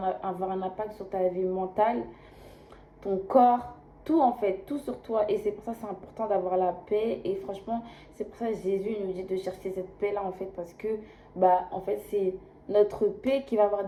un impact sur ta vie mentale, ton corps, tout en fait, tout sur toi. Et c'est pour ça que c'est important d'avoir la paix. Et franchement, c'est pour ça que Jésus nous dit de chercher cette paix-là en fait, parce que bah en fait c'est notre paix qui va avoir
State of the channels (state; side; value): identical; both; correlation 1.00